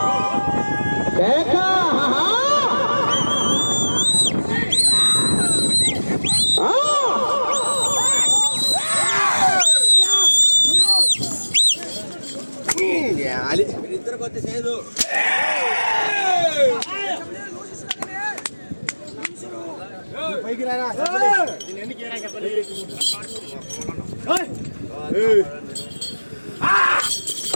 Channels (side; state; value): both; inverted; correlation -1.00